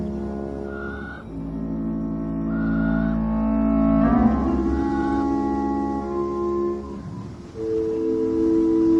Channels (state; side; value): identical; both; correlation 1.00